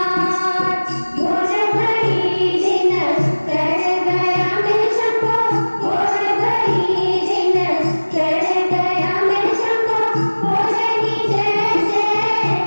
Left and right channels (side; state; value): both; inverted; correlation -1.00